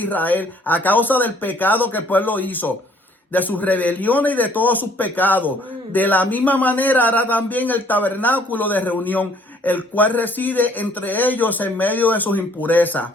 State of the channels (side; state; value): both; normal; correlation 0.60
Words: a causa del pecado que el pueblo hizo, de sus rebeliones y de todos sus pecados. De la misma manera hará también el tabernáculo de reunión, el cual reside entre ellos en medio de sus impurezas.